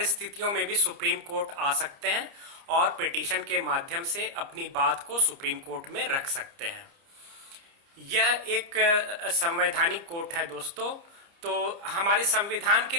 में भी सुप्रीम कोर्ट आ सकते हैं और पिटीशन के माध्यम से अपनी बात को सुप्रीम कोर्ट में रख सकते हैं। यह एक संवैधानिक कोर्ट है दोस्तों। तो हमारे संविधान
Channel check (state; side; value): late; left; 30 ms